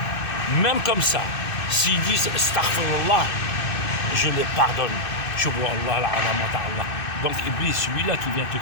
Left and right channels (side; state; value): right; late; 2.6 ms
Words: même comme ça, s'ils disent Astaghfirullah, je les pardonne. Donc Iblis, celui-là qui vient te